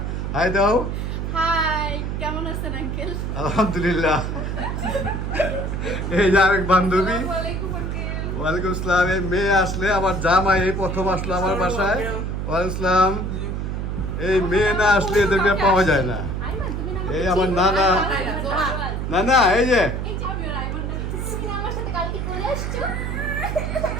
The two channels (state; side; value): noise; right; hum, 3 dB below the sound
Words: হাই দাও। হাই, কেমন আছেন আঙ্কেল? আলহামদুলিল্লাহ। এই যে আরেক বান্ধবী। আসসালামু আলাইকুম আঙ্কেল। ওয়ালাইকুম আসসালাম। এই মেয়ে আসলে আমার জামাই এই প্রথম আসলো আমার বাসায়। ওয়ালাইকুম আসসালাম। এই মেয়ে না আসলে এদেরকে পাওয়া যায় না। আইমান, তুমি না এই আমার নানা, নানা এই যে এই যে আমি আইমান, তুমি আমার সাথে কালকে চলে আসছো?